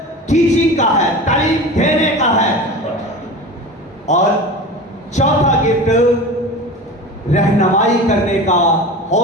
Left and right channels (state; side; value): normal; both; correlation 0.33